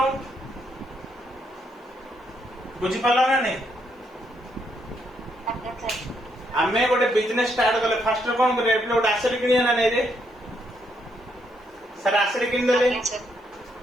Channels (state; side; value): normal; both; correlation 0.75